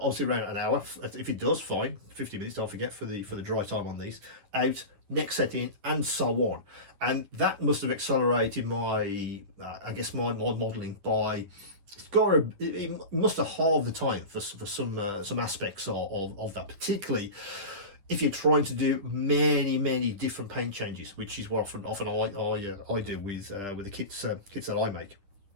around an hour, if it does, fine. 50 minutes, don't forget, for the dry time on these. Out, next set in, and so on. And that must have accelerated my modelling by. It must have halved the time for some aspects of that, particularly if you're trying to do many different paint changes, which is what often I do with the kits that I make.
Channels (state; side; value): late; left; 10 ms